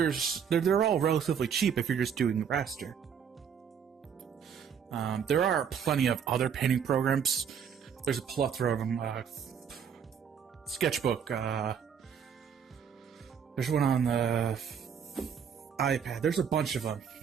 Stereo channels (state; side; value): quieter; left; 7.5 dB